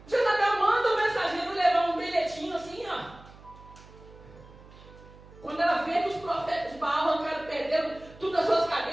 Jezabel manda o mensageiro levar um bilhetinho assim, ó. Quando ela vê que os profetas de Baal arrancaram, perderam tudo as suas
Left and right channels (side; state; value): right; noise; hum, 21 dB below the sound